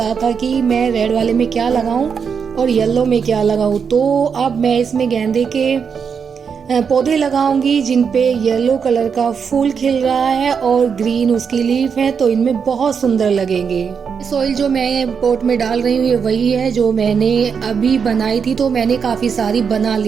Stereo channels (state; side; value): quieter; left; 6.4 dB